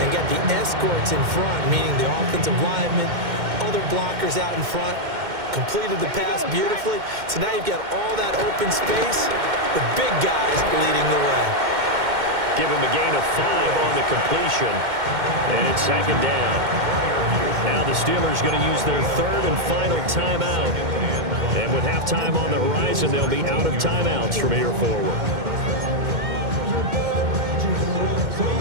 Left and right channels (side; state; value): left; late; 2.1 ms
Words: and got the escorts in front, meaning the offensive linemen, other blockers out in front, completed the pass beautifully. So now you've got all that open space with big guys leading the way. Give him a gain of 5 on the completion, and it's 2nd down. Now the Steelers going to use their 3rd and final timeout. And with halftime on the horizon, they'll be out of timeouts from here forward.